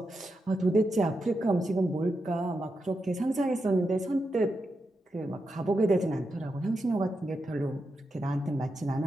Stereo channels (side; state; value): both; normal; correlation 0.87